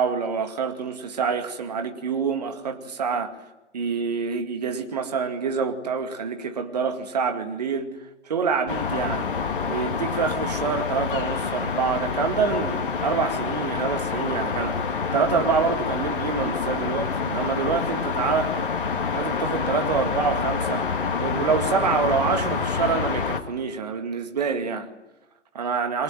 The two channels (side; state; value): both; normal; correlation 0.12